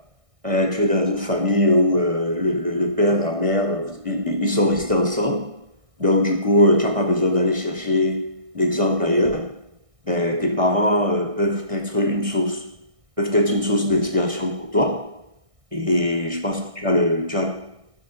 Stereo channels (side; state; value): left; late; 1.6 ms